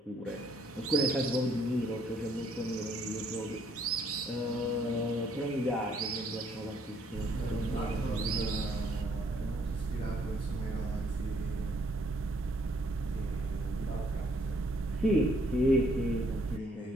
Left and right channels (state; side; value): normal; both; correlation 0.67